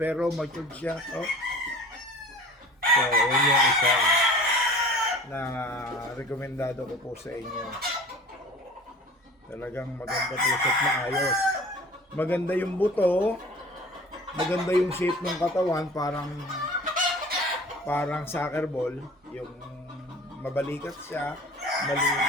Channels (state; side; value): normal; both; correlation 0.43